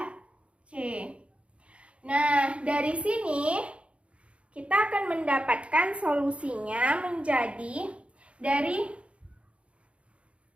c. Nah, dari sini kita akan mendapatkan solusinya menjadi dari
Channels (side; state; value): left; late; 0.061 ms